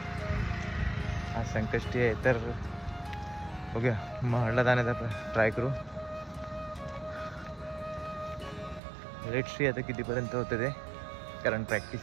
आज संकष्टी आहे तर बघूया महाडला जाण्याचा ट्राय करू. लेट सी आता कितीपर्यंत होतं ते, कारण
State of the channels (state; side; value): drops out; left; at 8.8 s